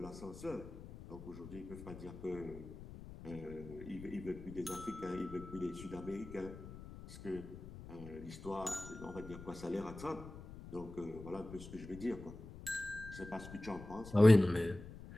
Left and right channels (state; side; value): noise; left; rumble, 13 dB below the sound